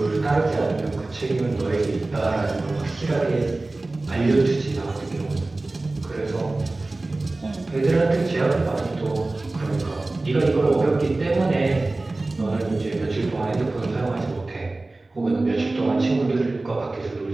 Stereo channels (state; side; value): quieter; left; 3.1 dB